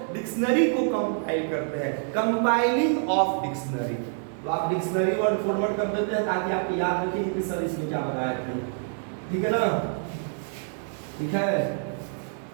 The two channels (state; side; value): silent; left; 60 dB below the other